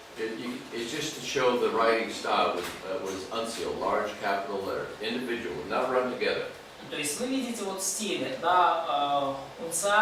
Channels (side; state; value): both; identical; correlation 1.00